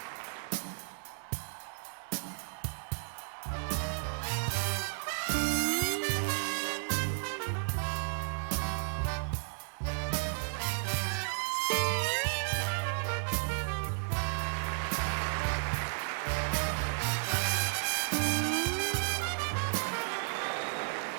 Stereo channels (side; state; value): left; silent; 55 dB below the other